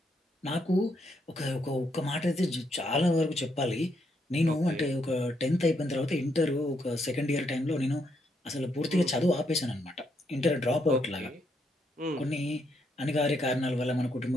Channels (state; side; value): normal; both; correlation 0.76